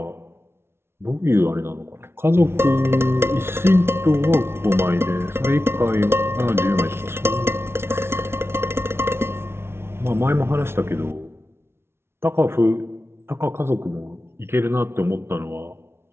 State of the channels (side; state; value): left; late; 0.12 ms